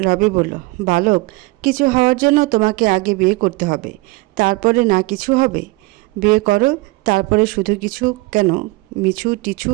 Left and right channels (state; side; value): quieter; left; 22.7 dB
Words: রবি বলল, বালক, কিছু হওয়ার জন্য তোমাকে আগে বিয়ে করতে হবে, তারপরে না কিছু হবে। বিয়ে করো, তারপরে শুধু কিছু কেন, মিছু টিছু